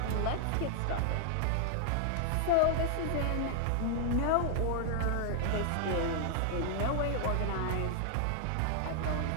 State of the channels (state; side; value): different; both; correlation 0.00